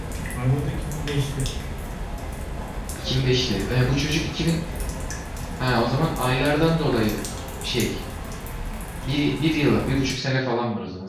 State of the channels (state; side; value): identical; both; correlation 1.00